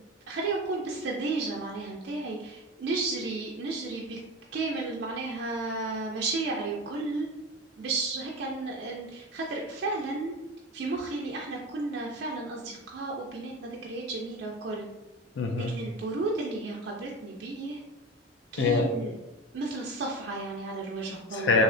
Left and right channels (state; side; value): normal; both; correlation 0.26